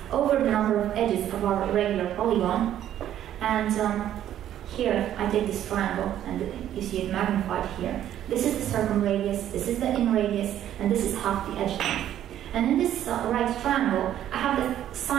over the number of edges of our regular polygon. And here I take this triangle, and you see it magnified here. This is the circumradius, this is the in radius, and this is half the edge length. And in this right triangle, I have the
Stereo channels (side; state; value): left; quieter; 11.4 dB